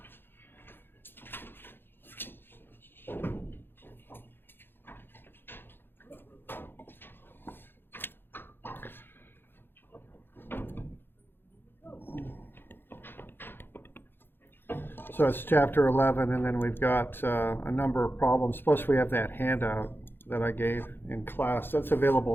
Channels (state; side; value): late; right; 0.10 ms